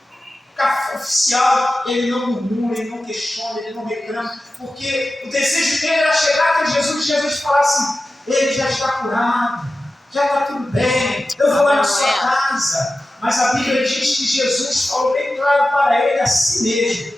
oficial, ele não murmura, ele não questiona, ele não reclama, porque o desejo dele era chegar até Jesus e Jesus falar assim: ele já está curado, já está tudo bem, eu vou lá na sua casa. Mas a Bíblia diz que Jesus falou bem claro para ele assim mesmo:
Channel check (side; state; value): both; normal; correlation 0.94